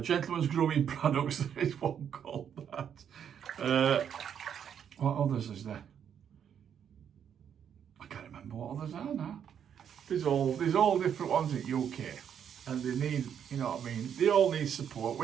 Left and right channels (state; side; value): quieter; left; 8.5 dB